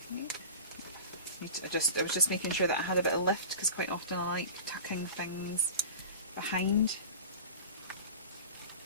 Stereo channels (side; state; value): both; inverted; correlation -0.33